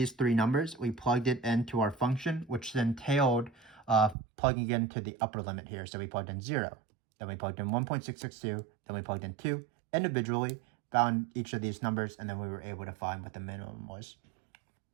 3 numbers, we plugged it into our function, which then entailed plugging into the upper limit here. So we plugged in 0, then we plugged in 1.662, then we plugged in 2 individually, found each of these numbers, and then we were able to find what the minimum was.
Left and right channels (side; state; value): left; drops out; at 4.2 s